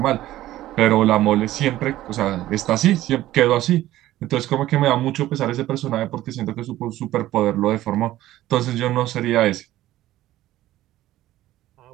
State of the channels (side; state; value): left; quieter; 14.8 dB